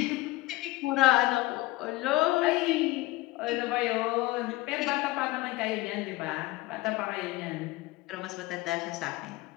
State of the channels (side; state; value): right; quieter; 19.0 dB